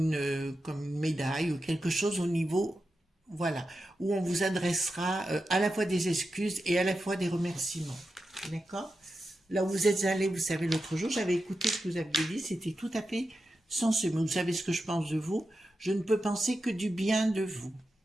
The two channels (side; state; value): both; normal; correlation 0.90